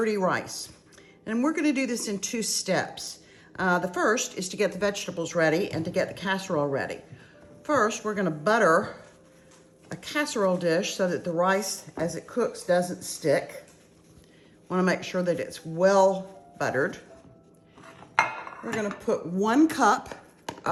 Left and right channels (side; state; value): both; identical; correlation 1.00